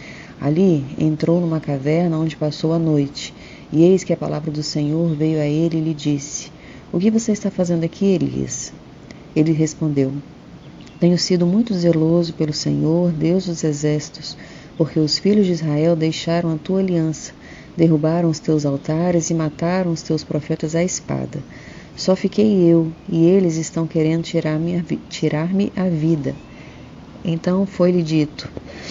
Ali entrou numa caverna onde passou a noite, e eis que a palavra do Senhor veio a ele e lhe disse: O que você está fazendo aqui, Elias? Ele respondeu: Tenho sido muito zeloso pelo Senhor, Deus dos exércitos, porque os filhos de Israel deixaram a tua aliança, derrubaram os teus altares e mataram os teus profetas à espada. Só fiquei eu, e eles estão querendo tirar-me a vida. Então foi-lhe dito:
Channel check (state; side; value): identical; both; correlation 1.00